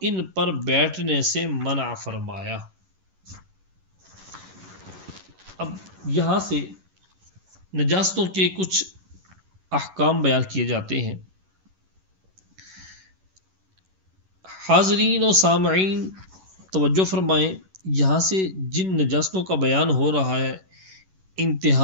ان پر بیٹھنے سے منع فرمایا۔ اب یہاں سے نجاستوں کے کچھ احکام بیان کیے جاتے ہیں۔ حاضرین و سامعین توجہ فرمائیں، یہاں سے جن نجاستوں کا بیان ہو رہا ہے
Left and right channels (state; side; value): late; left; 11 ms